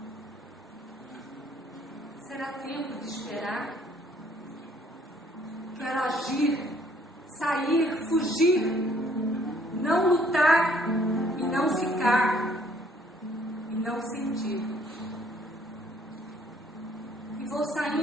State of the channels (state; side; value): normal; both; correlation 0.62